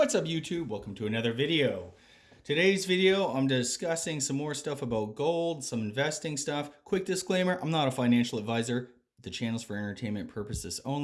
up YouTube? Welcome to another video. Today's video, I'm discussing some more stuff about gold, some investing stuff. Quick disclaimer, I'm not a financial advisor. The channel's for entertainment purposes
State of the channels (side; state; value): both; identical; correlation 1.00